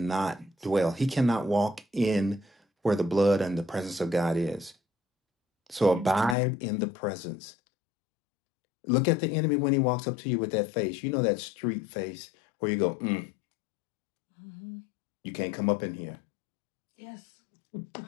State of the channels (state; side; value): drops out; right; at 6.4 s